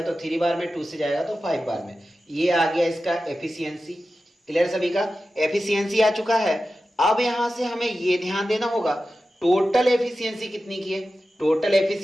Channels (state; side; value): normal; both; correlation 0.93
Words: तो 3 बार में, 2 से जाएगा तो 5 बार में। ये आ गया इसका एफिशिएंसी। क्लियर सभी का, एफिशिएंसी आ चुका है। अब यहां से हमें ये ध्यान देना होगा टोटल एफिशिएंसी कितनी की है, टोटल